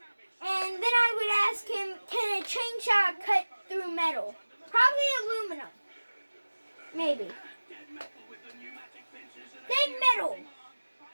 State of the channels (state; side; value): inverted; both; correlation -1.00